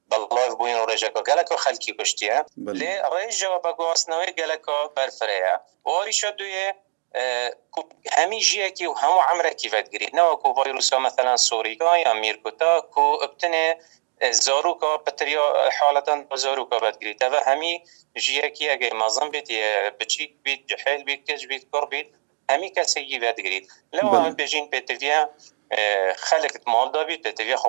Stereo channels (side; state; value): left; silent; digital silence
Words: بلایف بوین و رجا که گلکا خلکی کشتیه لی رجا بگو اصنوی گلکا برفره و آریشا دوی همی جیه که و همو عمره کی ود گرید نه وکو ویروسا مثلا سوریکا یا میرکوتا که ابتنه زاروکا بطریا حالتا زاروکا بدگیری تا و همی جیه که اگه مازن بید بچیک بید جحیل بید کج بید کر بید همی کسی وید گرید لو بله. هم بجین پتویا خلق مال دابید پتویا